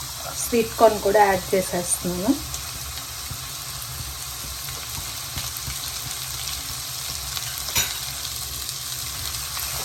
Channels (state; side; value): identical; both; correlation 1.00